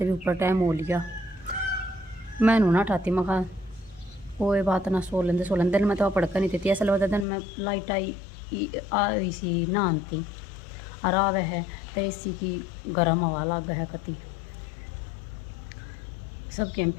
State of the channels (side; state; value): right; drops out; at 7.2 s